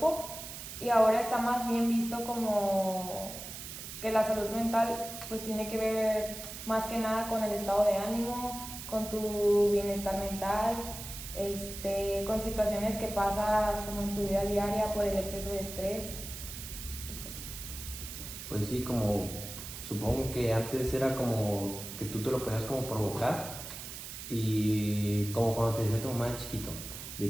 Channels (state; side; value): noise; right; hiss, 10 dB below the sound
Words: y ahora está más bien visto como que la salud mental pues tiene que ver más que nada con el estado de ánimo, con tu bienestar mental, con situaciones que pasas como en tu vida diaria por el exceso de estrés y pues eso. Pues sí, como supongo que antes era como que tú te lo podías como provocar, y como cuando te decía tu mamá de chiquito,